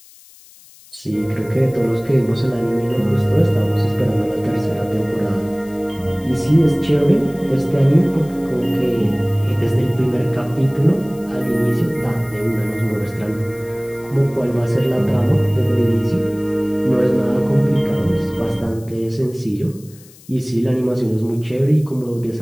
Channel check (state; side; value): noise; left; hiss, 24 dB below the sound